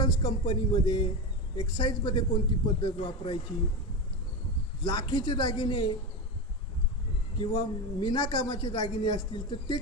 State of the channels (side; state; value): both; normal; correlation 0.18